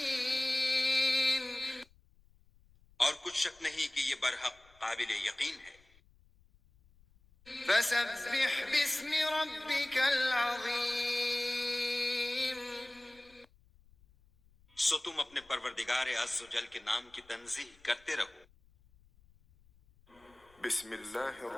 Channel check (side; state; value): left; noise; rumble, 29 dB below the sound